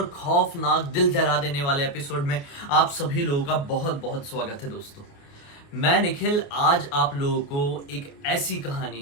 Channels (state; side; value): late; right; 29 ms